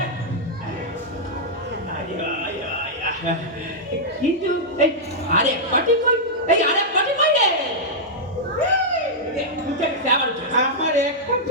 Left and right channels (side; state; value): both; normal; correlation -0.08